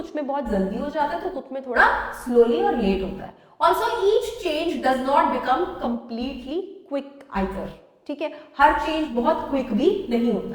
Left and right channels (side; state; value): both; identical; correlation 1.00